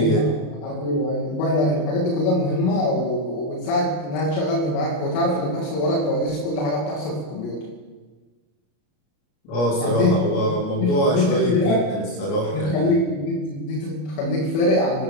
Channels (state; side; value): late; right; 33 ms